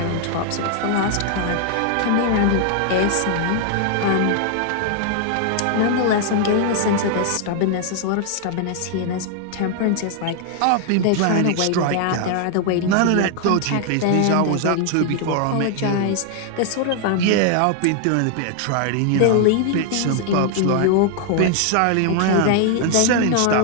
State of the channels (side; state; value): both; different; correlation 0.00